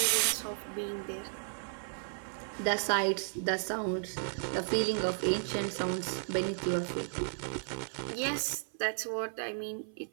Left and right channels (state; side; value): silent; left; 55 dB below the other